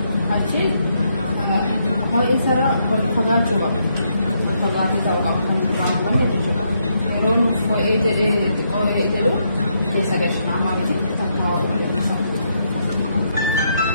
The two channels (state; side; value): inverted; both; correlation -0.77